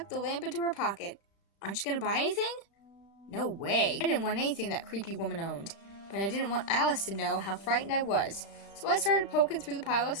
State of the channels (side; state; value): right; late; 36 ms